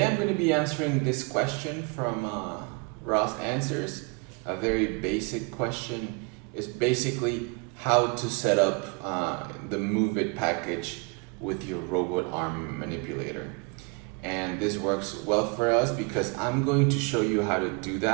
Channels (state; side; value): quieter; left; 32.2 dB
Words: I'm going to be answering this question from ROS Answers. A very basic question. Is basically how to set up the MoveIt package with your robot arm manipulator. And this works well for us because I'm going to show you how to do